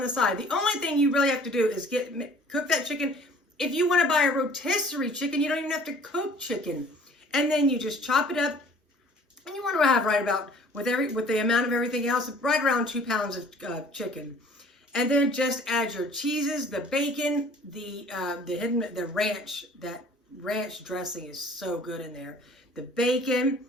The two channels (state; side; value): normal; both; correlation 0.52